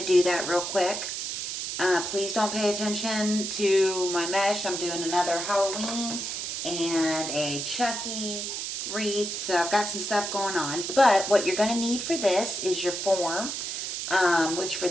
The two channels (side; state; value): right; noise; hiss, 4 dB below the sound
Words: do that real quick. Please don't pay attention to my mesh. I'm doing another Halloween and a Chucky wreath, so I've got some stuff going on. But what you're going to need for this is your form, which for